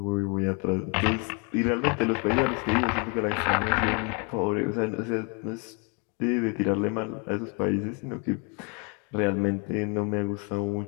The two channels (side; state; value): right; quieter; 33.9 dB